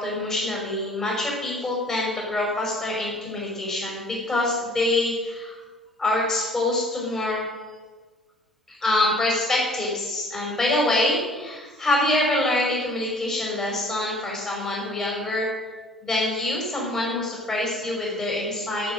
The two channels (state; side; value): normal; both; correlation 0.52